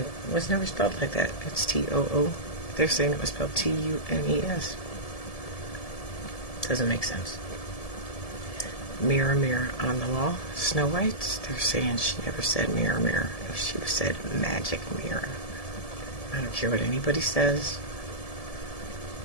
was never spelled like that. It's T-O-O. They're saying it was spelled T-U-N-E-S. Doesn't make sense. Mirror, mirror on the wall. Snow White. They're saying she never said mirror, mirror. She said magic mirror. I don't care what anybody says.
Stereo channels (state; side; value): late; right; 1.7 ms